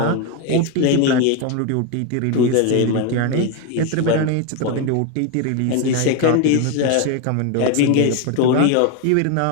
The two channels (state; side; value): different; both; correlation 0.02